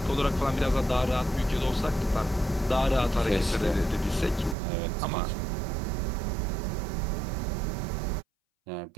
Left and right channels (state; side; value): drops out; left; at 4.5 s